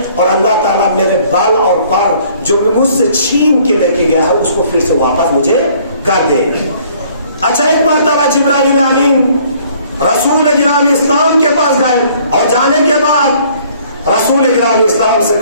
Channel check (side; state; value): both; inverted; correlation -0.59